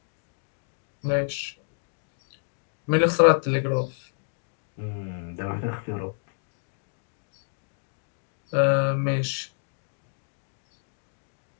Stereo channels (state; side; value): silent; right; digital silence